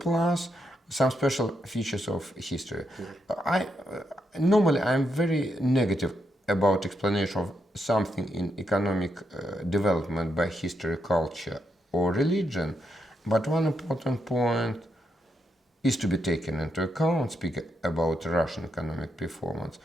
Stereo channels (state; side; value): normal; both; correlation 0.81